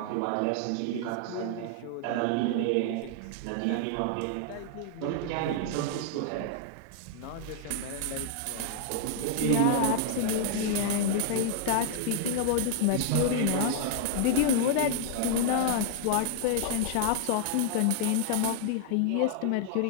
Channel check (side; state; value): both; different; correlation -0.01